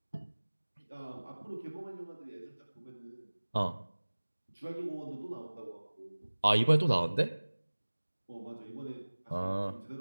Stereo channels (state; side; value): inverted; both; correlation -1.00